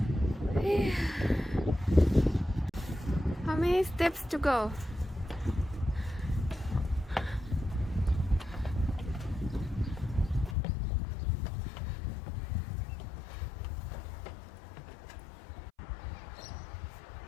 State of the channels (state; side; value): drops out; right; at 10.6 s